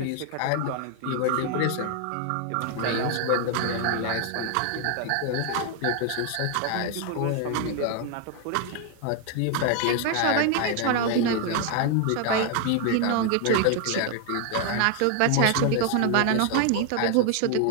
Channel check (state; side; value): different; both; correlation 0.00